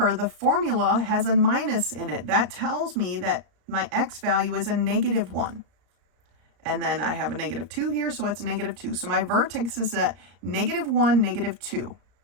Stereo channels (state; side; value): late; left; 34 ms